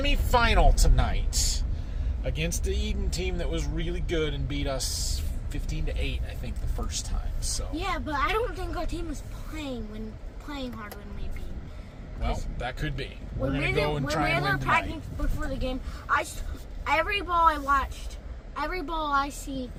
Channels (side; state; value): both; identical; correlation 1.00